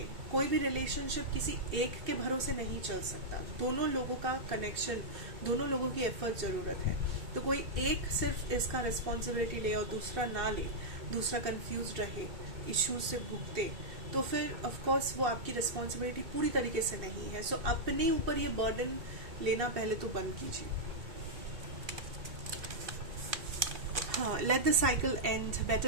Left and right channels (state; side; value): late; left; 2.6 ms